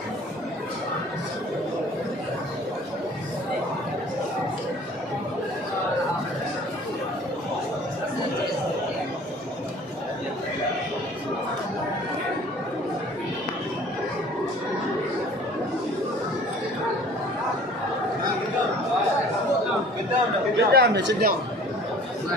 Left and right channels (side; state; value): both; normal; correlation 0.49